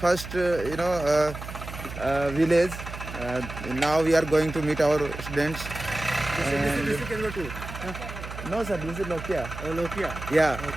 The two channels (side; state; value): right; noise; hum, 10 dB below the sound